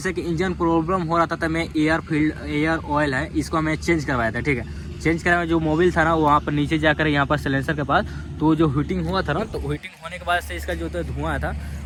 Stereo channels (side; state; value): both; identical; correlation 1.00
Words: कि इंजन प्रॉब्लम हो रहा था, तो मैं एयर ऑयल है इसको मैं चेंज करवाया था, ठीक है। चेंज कराया, जो मोबिल था ना वहाँ पर नीचे जाकर यहाँ पर सिलेंसर के पास, तो जो हीटिंग हुआ था ना, तो हीटिंग होने के बाद से इसका जो धुआं था